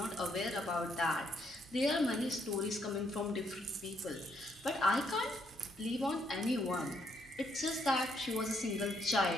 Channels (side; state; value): both; normal; correlation 0.73